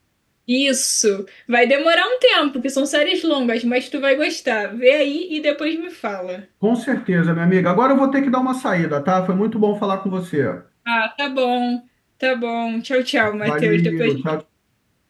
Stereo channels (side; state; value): both; identical; correlation 1.00